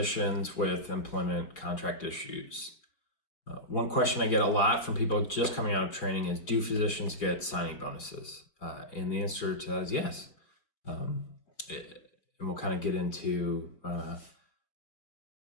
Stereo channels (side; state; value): right; late; 5.0 ms